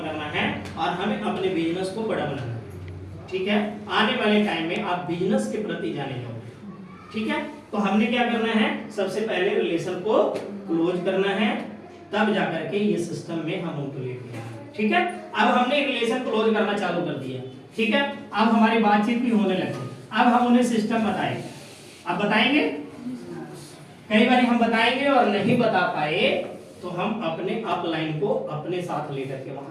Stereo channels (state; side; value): identical; both; correlation 1.00